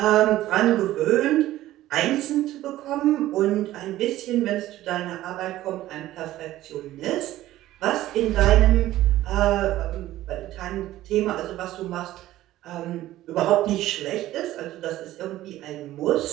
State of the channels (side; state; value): left; quieter; 14.9 dB